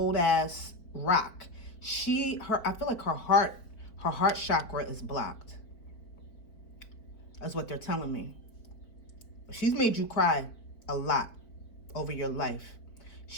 ass rock. I feel like her heart chakra is blocked. That's what they're telling me. She's made you cry a lot over your life.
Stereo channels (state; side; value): late; right; 4.7 ms